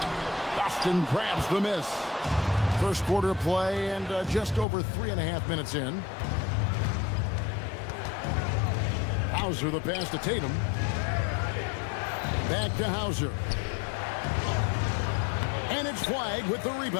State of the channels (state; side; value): drops out; right; at 4.7 s